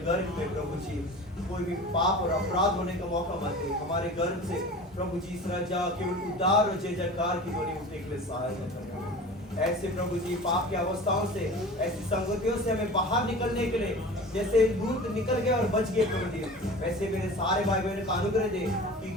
गर्भ में प्रभु जी कोई भी पाप और अपराध होने का मौका मत दे. हमारे गर्भ से प्रभु जी इस राजा केवल उद्धार और जय जयकार की ध्वनि उठने के लिए सहायता करना. ऐसे प्रभु जी पाप की अवस्थाओं से, ऐसी संगतियों से हमें बाहर निकलने के लिए, जैसे लूत निकल गए और बच गए प्रभु जी, वैसे मेरे सारे भाई बहनों का अनुग्रह दे कि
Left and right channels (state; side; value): normal; both; correlation 0.37